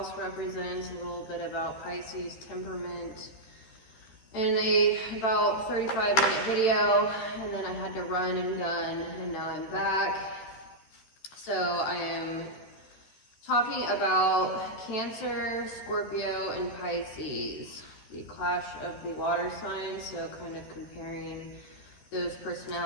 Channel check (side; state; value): right; late; 13 ms